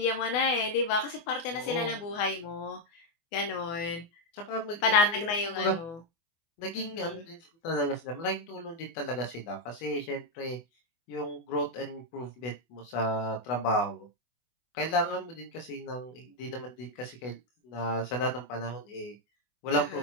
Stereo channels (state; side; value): late; right; 24 ms